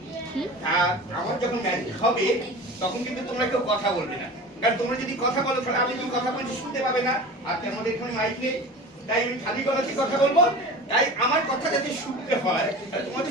আর আমার যখন ম্যাজিক হবে তখন কিন্তু তোমরা কেউ কথা বলবে না, কারণ তোমরা যদি কথা বলো তাহলে আমি কি কথা বলছি শুনতে পাবে না। আর আমাদের এখানে মাইক নেই, তাই আমি খালি গলাতে কথা বলবো। তাই আমার কথা যাতে শুনতে হয় তাহলে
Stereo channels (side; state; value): both; normal; correlation 0.35